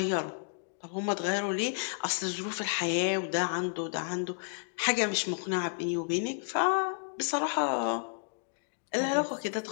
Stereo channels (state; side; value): silent; right; digital silence